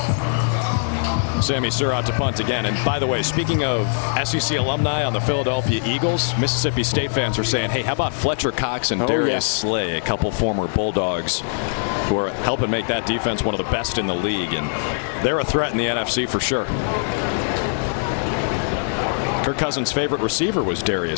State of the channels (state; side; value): silent; right; digital silence